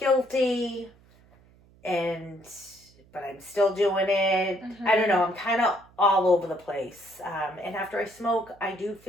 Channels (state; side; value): noise; right; hum, 28 dB below the sound